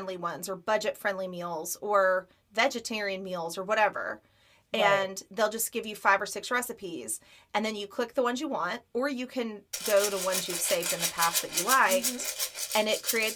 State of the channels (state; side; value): identical; both; correlation 1.00